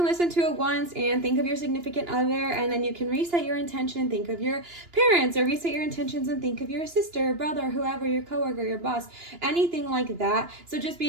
listen to it once and think of your significant other, and then you can reset your intention and think of your parents, or reset your intention and think of your sister, brother, whoever, your coworker, your boss, anything like that. So just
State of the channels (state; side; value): late; left; 2.9 ms